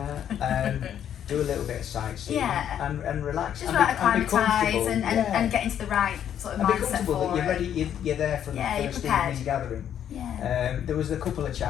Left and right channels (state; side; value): quieter; right; 9.7 dB